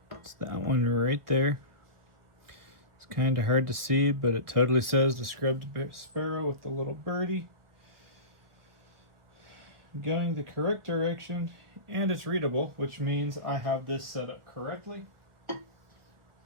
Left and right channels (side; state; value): left; late; 1.7 ms